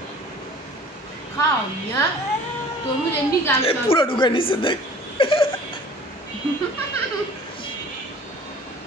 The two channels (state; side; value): normal; both; correlation 0.48